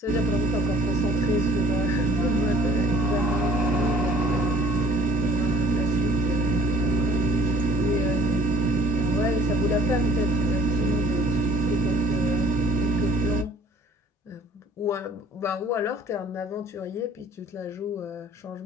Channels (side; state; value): both; normal; correlation 0.53